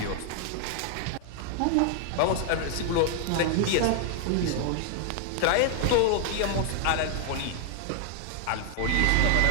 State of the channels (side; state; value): both; different; correlation 0.00